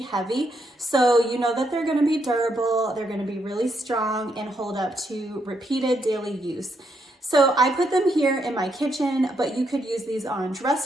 heavy. So you know that they're gonna be durable, they're gonna be really strong and hold up to repeated daily use. So I put them here in my kitchen, but you could use these on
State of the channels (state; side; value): normal; both; correlation 0.77